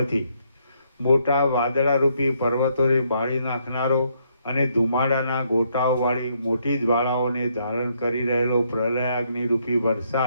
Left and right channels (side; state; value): both; inverted; correlation -0.73